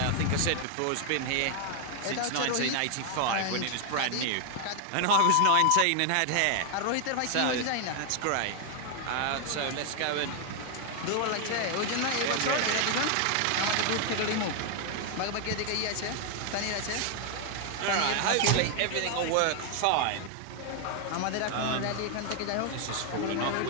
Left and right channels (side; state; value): both; different; correlation 0.00